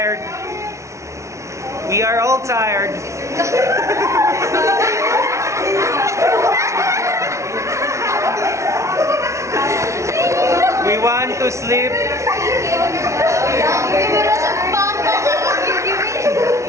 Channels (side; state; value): left; late; 0.14 ms